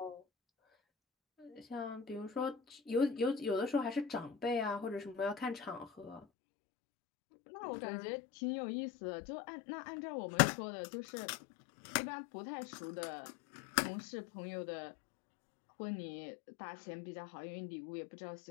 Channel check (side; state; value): right; drops out; at 6.2 s